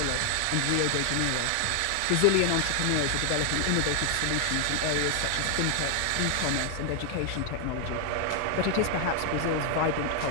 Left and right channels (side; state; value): both; different; correlation 0.00